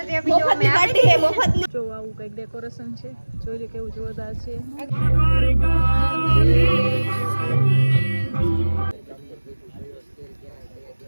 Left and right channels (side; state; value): both; inverted; correlation -1.00